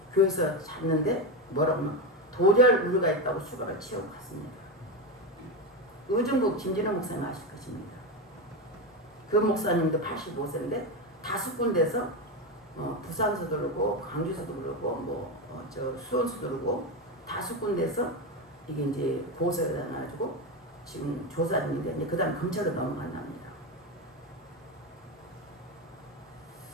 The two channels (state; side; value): normal; both; correlation 0.14